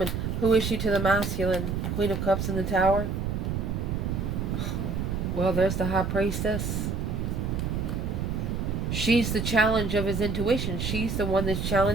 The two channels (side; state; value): right; noise; rumble, 1 dB below the sound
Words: Who is she to the masculine? Queen of Cups in the Tower. Well, there's the High Priestess. She's the challenge of his intuition. She's the one that's